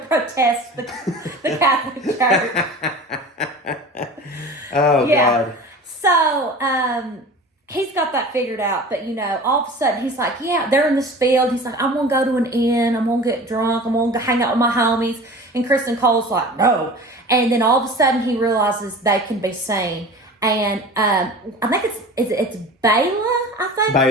the Catholic Church. Oh, yeah. God. So, he's got that figured out. But, all of a sudden, he's like, yeah, they're in this field. He's like, I'm going to go to an inn. I'm going to get drunk. I'm going to hang out with my homies. And Kristen Cole's like, no. And then all of a sudden, he realizes they can be seen. And I think it's Bela, I think.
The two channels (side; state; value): both; normal; correlation 0.38